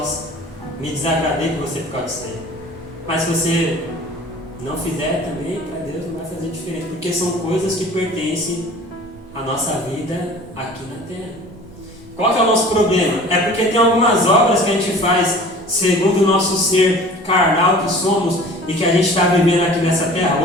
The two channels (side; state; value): both; normal; correlation 0.44